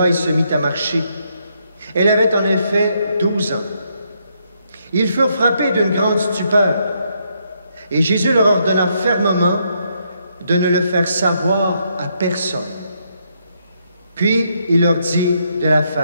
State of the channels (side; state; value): both; inverted; correlation -0.76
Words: et se mit à marcher. Elle avait en effet 12 ans. Ils furent frappés d'une grande stupeur, et Jésus leur ordonna fermement de ne le faire savoir à personne. Puis il leur dit de la